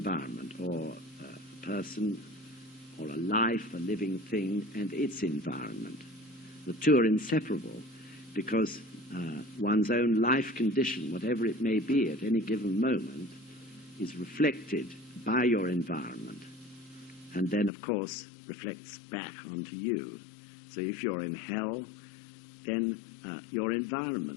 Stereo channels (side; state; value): right; drops out; at 17.7 s